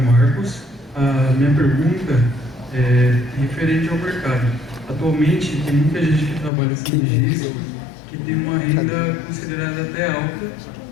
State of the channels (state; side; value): drops out; right; at 6.5 s